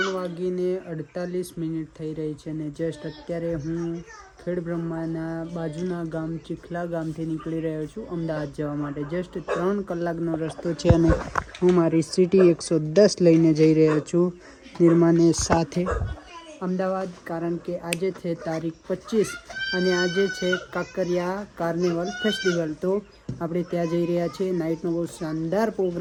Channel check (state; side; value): identical; both; correlation 1.00